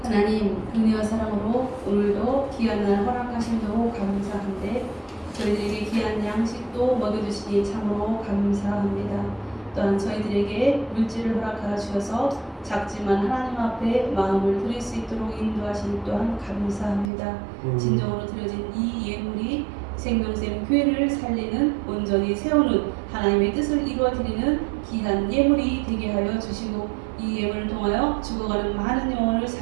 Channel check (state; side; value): drops out; left; at 17.1 s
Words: 하나님 은혜와 사랑으로 오늘도 귀한 날 허락하심도 감사한데 저희들에게 귀한 양식도 먹여주시니 참으로 감사합니다. 또한 저희들에게 물질을 허락하여 주셔서 작지만 하나님 앞에 마음을 드릴 수 있도록 인도하시니 또한 감사합니다. 진정으로 드려진 이 예물이 생명샘 교회를 살리는 온전히 세우는 하나님의 뜻을 이루어드리는 귀한 예물이 되게 하여 주시고 이 예물을 통하여 죽어가는 많은 영혼을